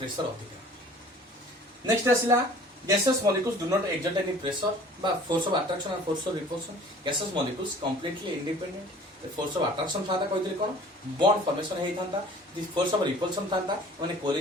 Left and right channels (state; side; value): normal; both; correlation 0.49